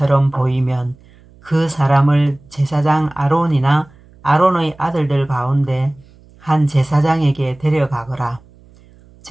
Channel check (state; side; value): noise; right; hum, 27 dB below the sound